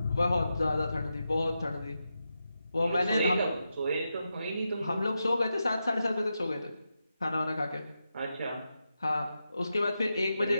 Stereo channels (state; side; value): inverted; both; correlation -0.88